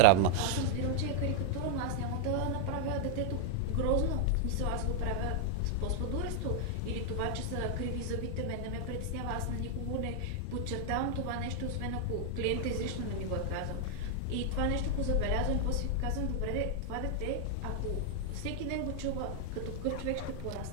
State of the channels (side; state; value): both; different; correlation 0.00